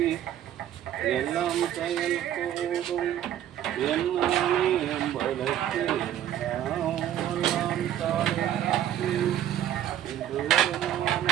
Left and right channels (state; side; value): quieter; left; 11.3 dB